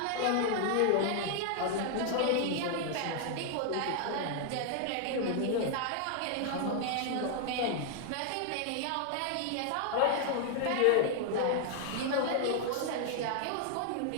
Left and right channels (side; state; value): both; different; correlation 0.00